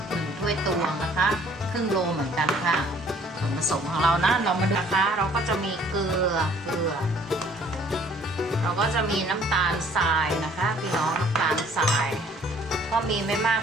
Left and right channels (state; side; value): normal; both; correlation 0.57